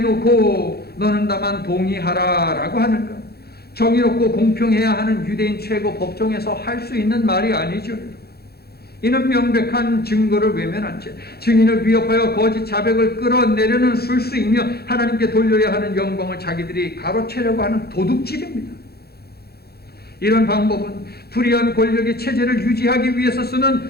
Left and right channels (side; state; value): right; late; 0.46 ms